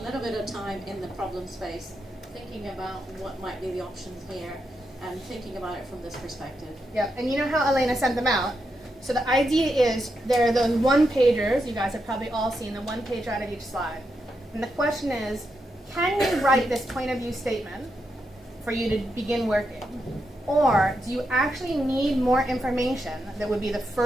little bit of time in the problem space thinking about what might be the options here and thinking about it from this perspective. Yep, and you know how Elena sent them out? So the idea is there are those one-pagers, you guys have probably all seen the one pager out of each slide. And the question is, can you write this point of view statement for you to begin working? Or do you actually need more information that would be the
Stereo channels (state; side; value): normal; both; correlation 0.84